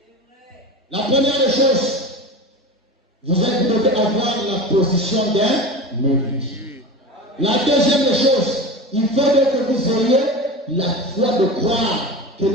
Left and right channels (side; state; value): both; normal; correlation 0.30